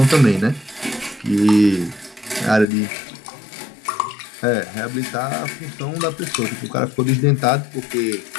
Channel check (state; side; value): drops out; right; at 2.7 s